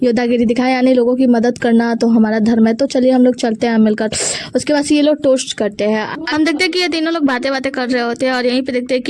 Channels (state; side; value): identical; both; correlation 1.00